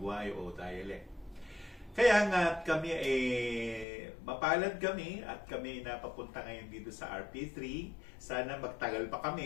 o dialect. Kaya nga kami mapalad kami at kami napapunta ngayon dito sa RP3. Sana magtagal pa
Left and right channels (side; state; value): right; drops out; at 3.9 s